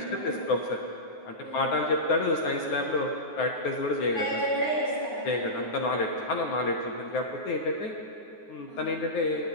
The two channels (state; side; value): late; right; 9.5 ms